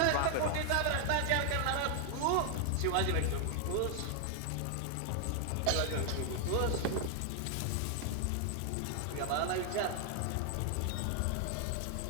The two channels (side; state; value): both; different; correlation 0.00